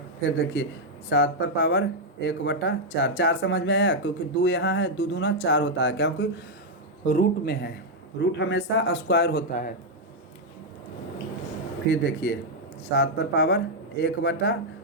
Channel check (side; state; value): both; normal; correlation -0.02